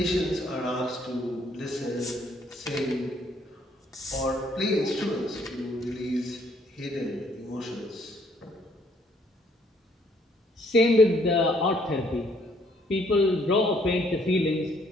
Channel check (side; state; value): both; normal; correlation 0.66